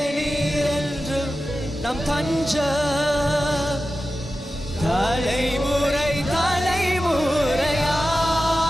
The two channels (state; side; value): normal; both; correlation 0.93